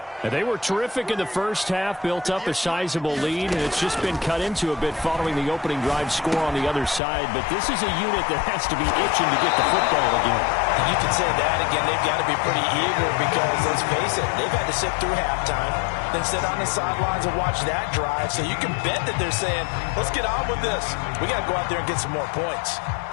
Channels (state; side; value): drops out; right; at 7.0 s